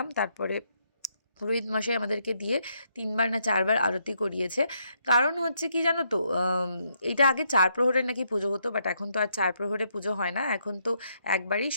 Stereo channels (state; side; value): inverted; both; correlation -0.75